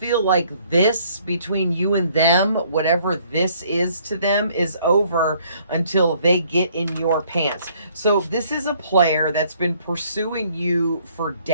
like this between you and them, whatever this is to them, is over until they get in your pants. So this is a player that's been pursuing you for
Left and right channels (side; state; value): both; inverted; correlation -0.63